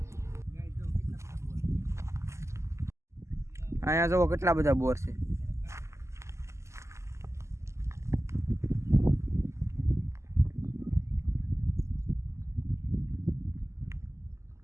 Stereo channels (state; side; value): late; left; 0.13 ms